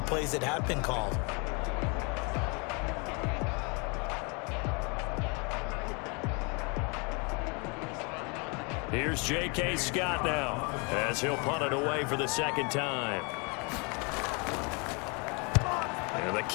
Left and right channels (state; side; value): quieter; right; 32.2 dB